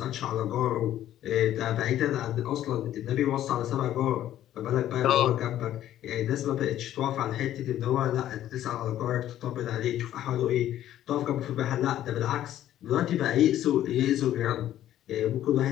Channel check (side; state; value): right; quieter; 12.3 dB